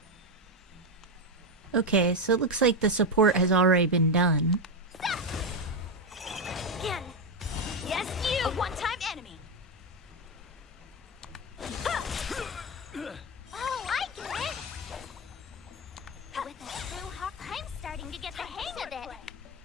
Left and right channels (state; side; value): normal; both; correlation 0.09